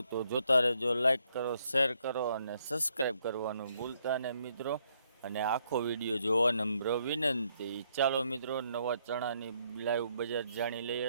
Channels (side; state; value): both; inverted; correlation -0.72